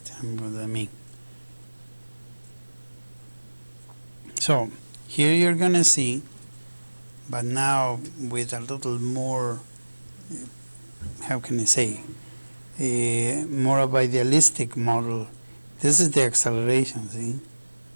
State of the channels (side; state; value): both; inverted; correlation -1.00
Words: what I mean. So here you're gonna see, but now with a little more, how can I say, more of a idealistic model. This is the acceleration, see?